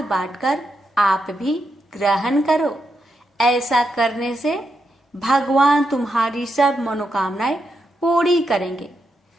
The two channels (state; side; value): normal; both; correlation 0.84